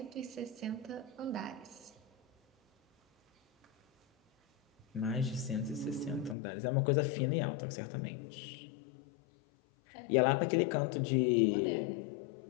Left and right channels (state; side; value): drops out; right; at 6.4 s